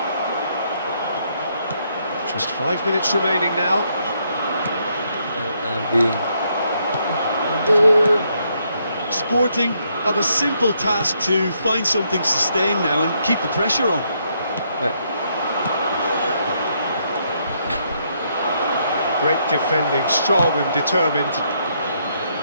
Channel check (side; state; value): both; inverted; correlation -0.74